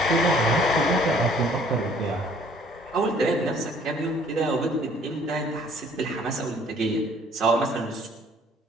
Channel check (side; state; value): both; normal; correlation 0.58